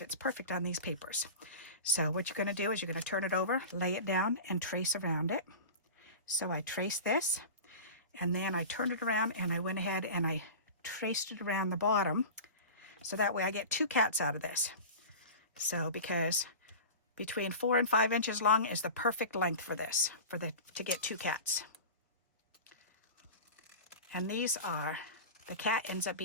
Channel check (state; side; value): inverted; both; correlation -0.32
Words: perfect on these papers. So what you're going to do is you're going to turn it over, lay it down, and trace around it. So I trace this, and then I turned it around, and I went ahead and I traced it around the bottom. So that way I get 2 cats out of this. So because between 4 and 5 inches long is the perfect length for this, to get 2 cats. And these are, the cat ends up